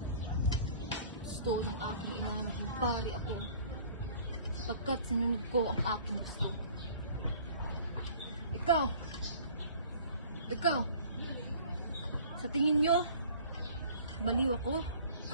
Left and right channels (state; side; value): inverted; both; correlation -0.50